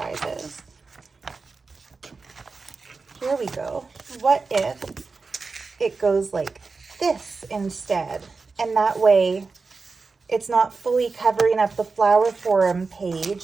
Here we go. What if it goes like this instead? And that way it's not fully covering up the flower forum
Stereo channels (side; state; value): left; quieter; 4.3 dB